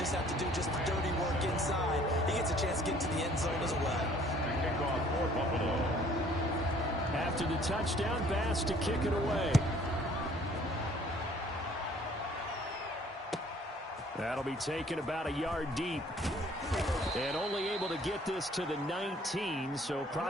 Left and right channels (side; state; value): both; normal; correlation 0.57